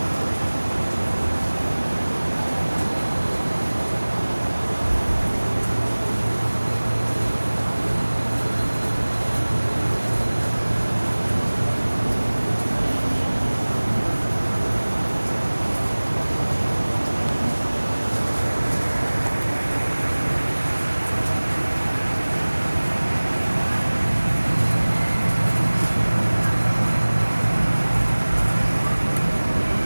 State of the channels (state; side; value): inverted; both; correlation -1.00